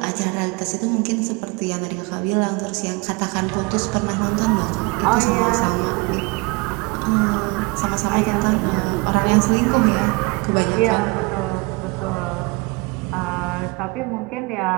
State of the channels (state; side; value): quieter; left; 27.0 dB